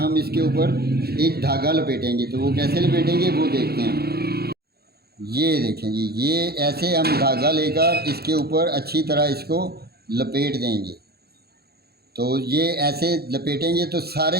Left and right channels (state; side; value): late; left; 0.46 ms